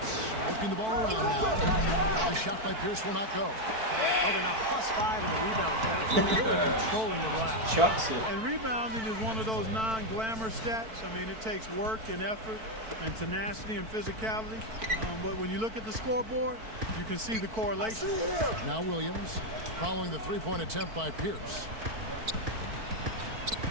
working the ball around now. The shot by Pierce will not go. Oh, they're now +5 in the rebound category, really controlling the glass. Chucks it. And rebounding is one of those non-glamour stats. I mean, it takes work and effort and tenacity and physicality. But when you look at the scoreboard, you can see the correlation. Now Williams following the three-point attempt by Pierce.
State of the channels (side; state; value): left; late; 4.5 ms